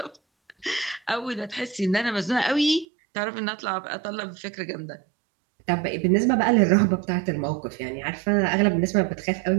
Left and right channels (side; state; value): left; drops out; at 2.9 s